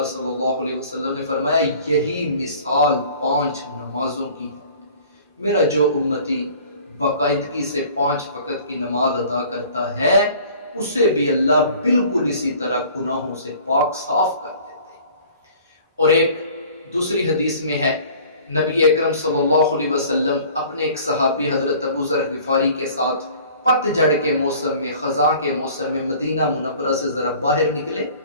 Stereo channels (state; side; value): inverted; both; correlation -0.49